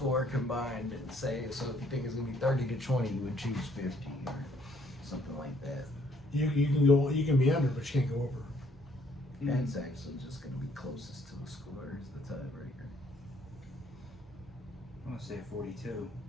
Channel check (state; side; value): normal; both; correlation 0.65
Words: combined, and say, so if you think it's going to be 30-20, you would choose 50 or something like that. You can be under, but you can't go over. That's actually just going to be closest to the score is the tiebreaker. I'm gonna say 42.